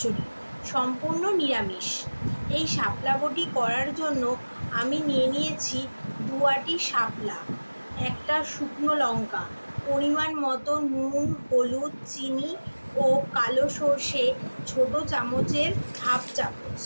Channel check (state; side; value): inverted; both; correlation -1.00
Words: সম্পূর্ণ নিরামিষ। এই শাপলা বটি করার জন্য আমি নিয়ে নিয়েছি 2 আটি শাপলা, একটা শুকনো লঙ্কা, পরিমাণ মতো নুন, হলুদ, চিনি ও কালো সর্ষে ছোট চামচের হাফ চামচ।